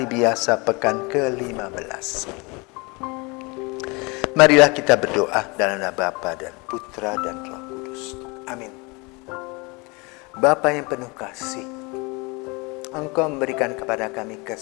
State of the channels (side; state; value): right; quieter; 27.8 dB